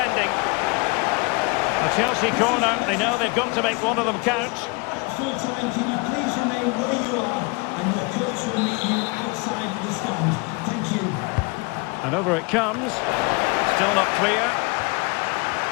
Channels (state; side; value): quieter; right; 27.8 dB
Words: A Chelsea corner. They know they've got to make one of them count. Full time, can you please remain where you are, and your coach will meet you outside the stand. Thank you. And over it comes. Still not clear.